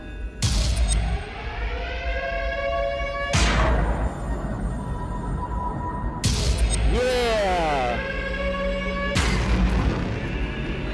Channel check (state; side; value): identical; both; correlation 1.00